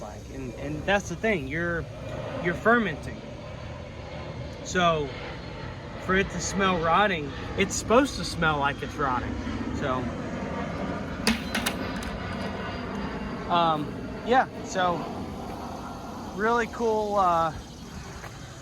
like. And that's the thing, you're fermenting. So for it to smell rotting, it's supposed to smell like it's rotting. So yeah, so really cool.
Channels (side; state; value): both; identical; correlation 1.00